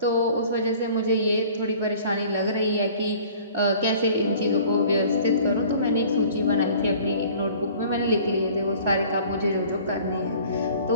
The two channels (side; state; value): both; inverted; correlation -0.49